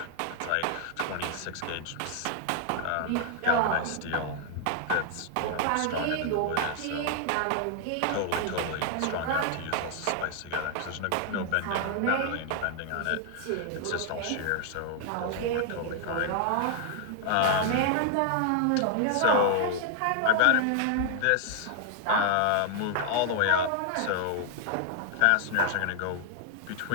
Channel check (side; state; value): both; different; correlation 0.00